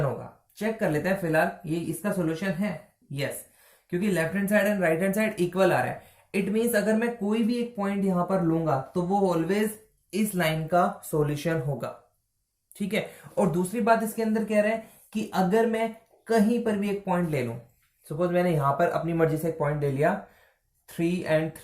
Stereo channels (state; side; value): identical; both; correlation 1.00